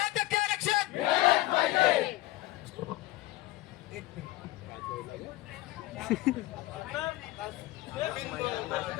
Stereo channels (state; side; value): quieter; right; 17.5 dB